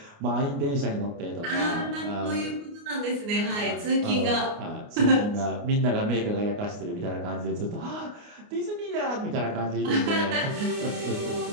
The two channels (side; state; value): left; late; 29 ms